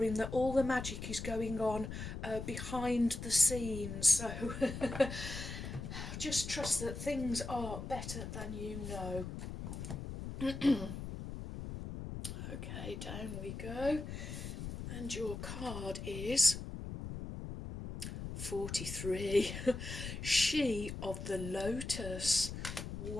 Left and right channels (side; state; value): left; noise; rumble, 7 dB below the sound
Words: that all the magic is going on behind the scenes. So just trust that things are better than you know. Okay, down we go. And your card is 43. She of the Lotus.